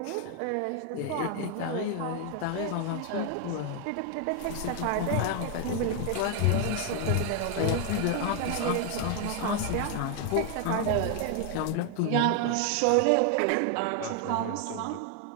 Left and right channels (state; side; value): different; both; correlation 0.01